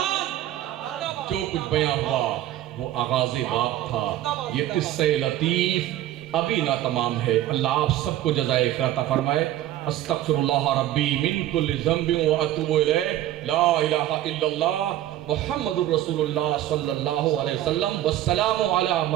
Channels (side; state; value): left; quieter; 13.3 dB